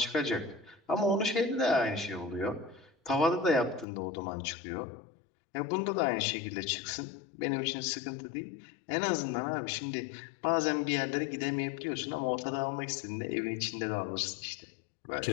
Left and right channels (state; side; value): drops out; right; at 3.9 s